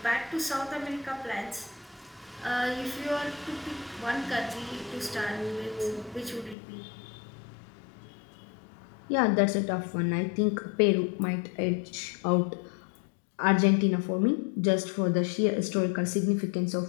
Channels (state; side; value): drops out; right; at 6.6 s